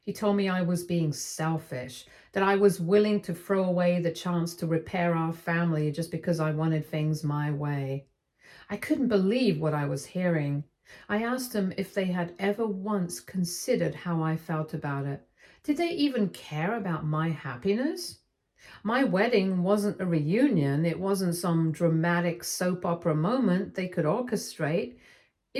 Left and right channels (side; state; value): both; identical; correlation 1.00